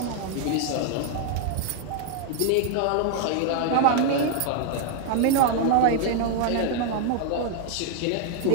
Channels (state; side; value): different; both; correlation 0.00